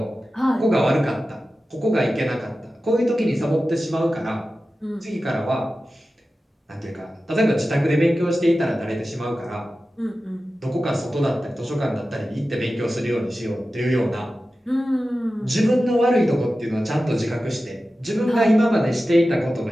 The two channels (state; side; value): normal; both; correlation 0.94